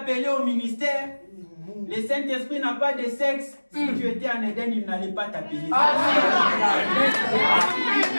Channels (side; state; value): both; inverted; correlation -1.00